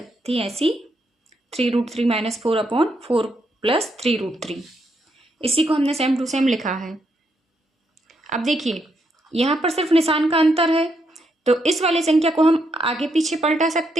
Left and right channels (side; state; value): both; normal; correlation 0.78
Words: थी ऐसी 3√3 माइनस 4/4 + 3√3। इसी को हमने सेम टू सेम लिखा है। अब देखिए यहाँ पर सिर्फ निशान का अंतर है तो इस वाली संख्या को हम आगे पीछे पलटा